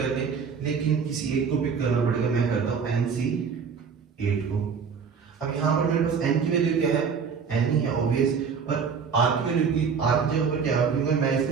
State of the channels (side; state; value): left; quieter; 6.1 dB